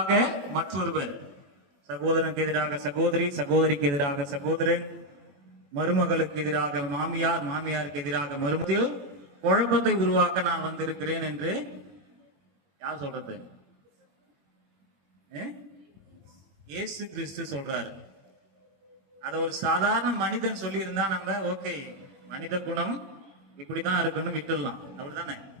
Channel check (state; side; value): late; left; 21 ms